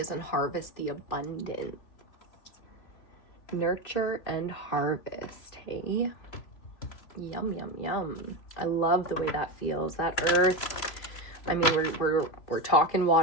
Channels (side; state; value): right; late; 3.1 ms